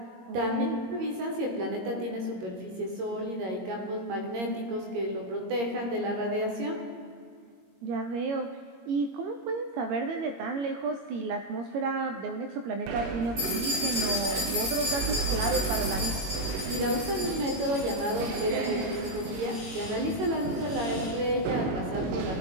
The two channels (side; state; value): left; late; 22 ms